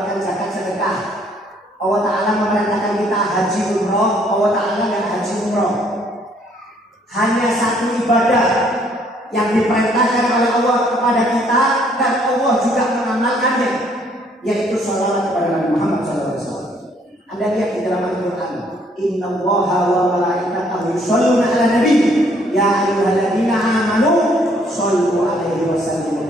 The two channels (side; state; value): both; normal; correlation 0.65